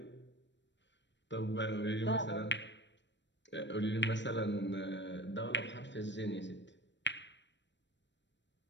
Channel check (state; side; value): late; right; 0.53 ms